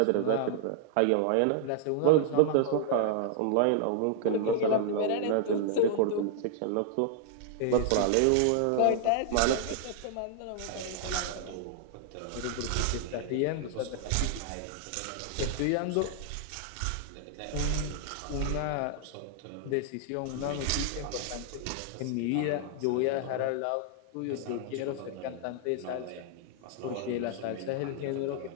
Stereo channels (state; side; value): different; both; correlation -0.01